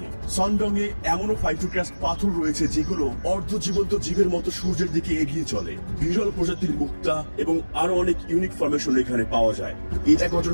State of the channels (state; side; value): inverted; both; correlation -1.00